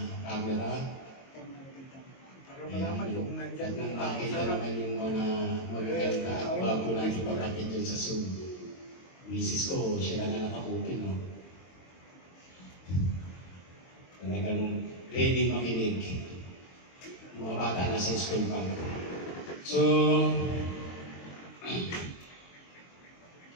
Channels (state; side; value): late; right; 22 ms